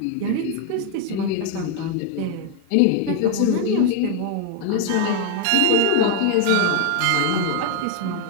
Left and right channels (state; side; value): different; both; correlation 0.01